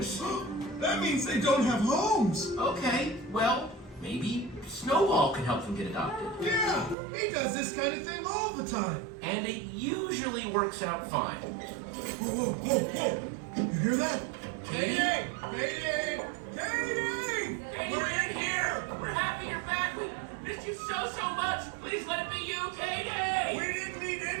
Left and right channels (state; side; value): drops out; left; at 7.0 s